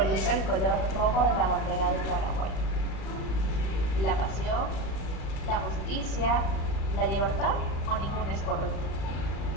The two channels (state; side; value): late; right; 36 ms